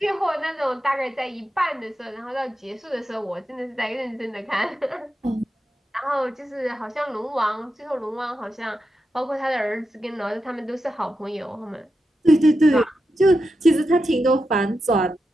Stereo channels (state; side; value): normal; both; correlation 0.88